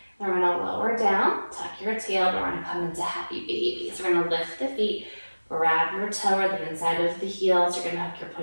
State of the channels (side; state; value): both; inverted; correlation -1.00